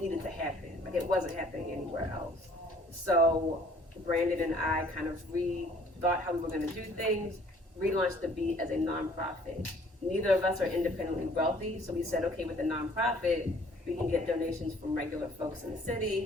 needed to happen. Like, it wasn't happening anywhere else. So Brandon and I kind of rethought how we were going to do things, relaunched the Beat as a nonprofit. Neither of us are independently wealthy, so we said, okay, with the nonprofit, we can get donations from regular folks in the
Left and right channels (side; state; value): both; normal; correlation 0.57